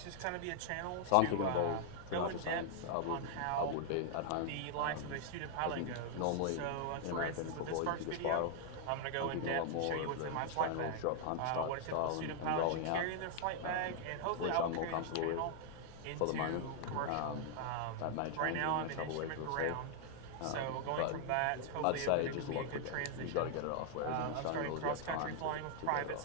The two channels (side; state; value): both; different; correlation -0.01